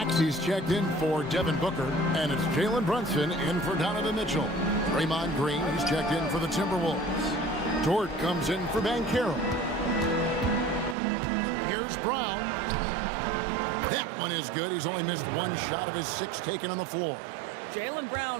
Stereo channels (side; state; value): left; drops out; at 11.0 s